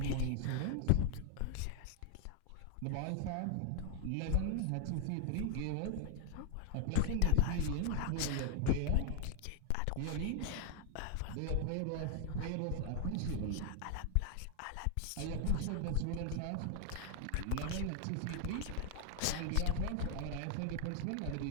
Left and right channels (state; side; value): different; both; correlation -0.01